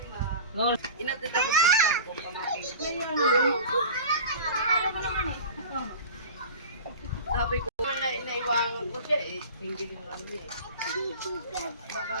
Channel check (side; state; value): both; inverted; correlation -0.36